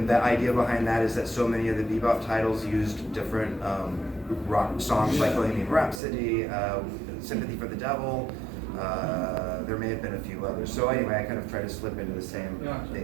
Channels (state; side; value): drops out; left; at 6.0 s